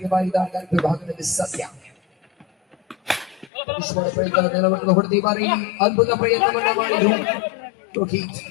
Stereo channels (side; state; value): right; drops out; at 3.5 s